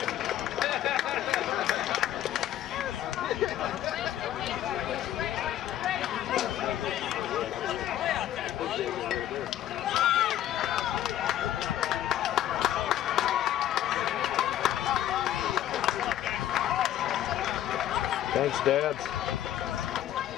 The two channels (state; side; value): quieter; right; 12.2 dB